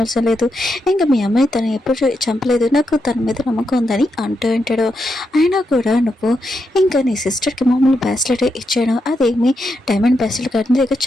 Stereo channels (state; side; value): normal; both; correlation 0.83